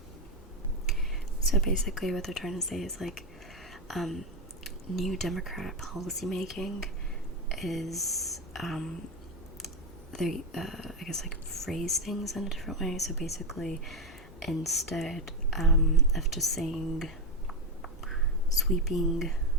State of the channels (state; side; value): normal; both; correlation 0.11